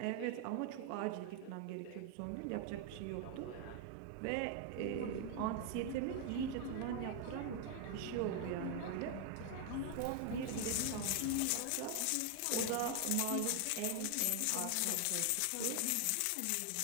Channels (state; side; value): different; both; correlation 0.00